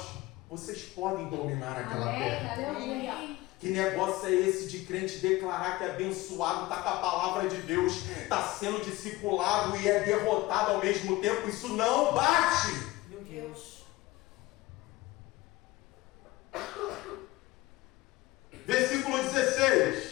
vocês podem dominar aquela terra. Aleluia. Que negócio é esse de crente declarar que é abençoado, está com a palavra de Deus, está sendo discipulado e é derrotado ao mesmo tempo? Isso não bate! Meu Deus. Versículo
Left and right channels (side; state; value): right; quieter; 19.7 dB